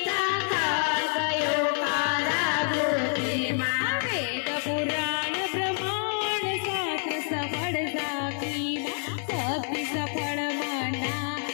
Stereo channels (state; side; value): silent; right; digital silence